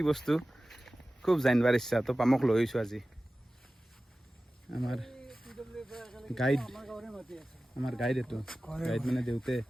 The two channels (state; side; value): normal; both; correlation 0.96